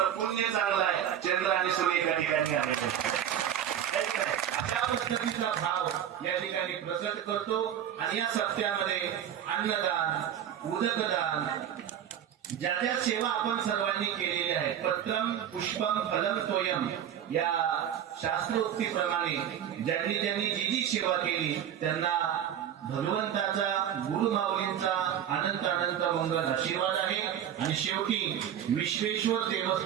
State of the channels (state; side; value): quieter; left; 9.9 dB